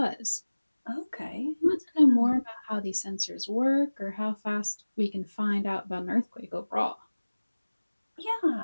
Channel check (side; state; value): both; inverted; correlation -1.00